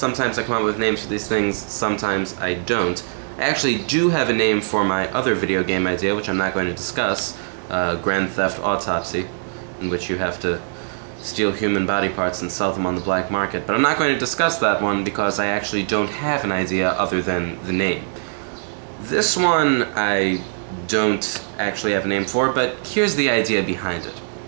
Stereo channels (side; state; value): left; silent; 64 dB below the other